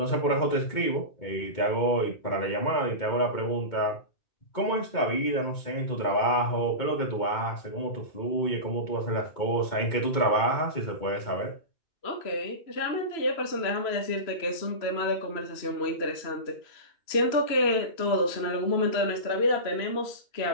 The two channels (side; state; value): right; late; 3.0 ms